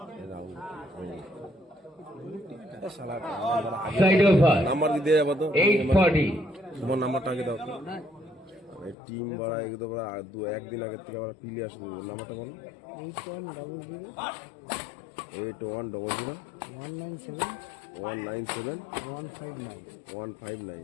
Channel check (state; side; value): drops out; right; at 9.0 s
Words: Side of her. Number কি দিয়ে যাবো তো 8-40. তোমার নাম্বারটা আগে দাও টিম বাড়া একদম একদিন আগের থেকে আমরা পিলে আসবো নাম্বারটা বলো 8100 8100 197 197 159